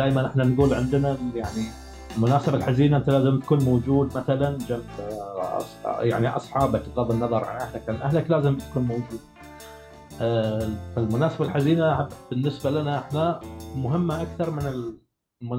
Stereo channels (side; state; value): both; identical; correlation 1.00